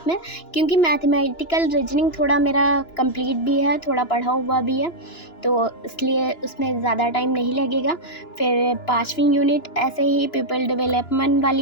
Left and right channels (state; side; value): late; right; 2.9 ms